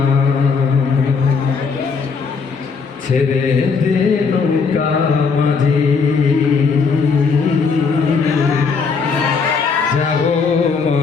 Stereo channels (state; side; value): quieter; right; 5.1 dB